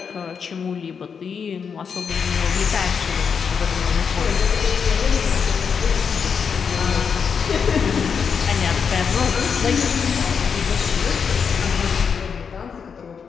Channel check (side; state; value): right; quieter; 6.4 dB